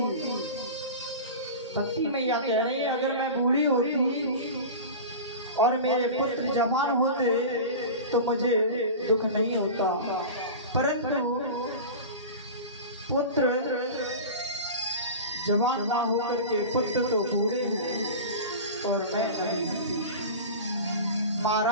भक्ति मैया कह रही है, अगर मैं बूढ़ी होती और मेरे पुत्र जवान होते तो मुझे दुख नहीं होता, परंतु पुत्र जवान ना होकर के पुत्र तो बूढ़े हैं और मैं नहीं।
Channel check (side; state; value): both; inverted; correlation -0.30